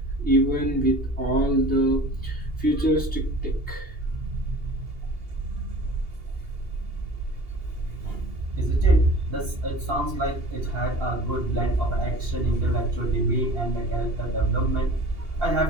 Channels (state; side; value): late; left; 2.8 ms